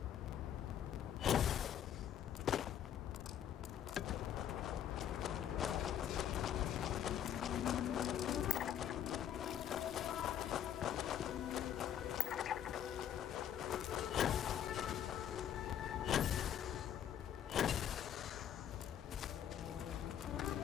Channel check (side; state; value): right; quieter; 10.0 dB